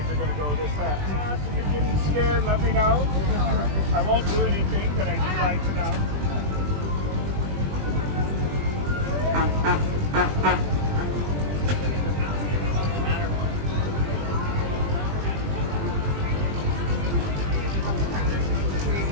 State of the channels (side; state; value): left; late; 20 ms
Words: are going to go this fast. If you're getting scared, let me know. I won't do anything, but I do like to know.